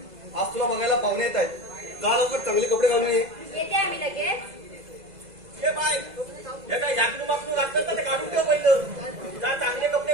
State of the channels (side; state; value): left; late; 2.0 ms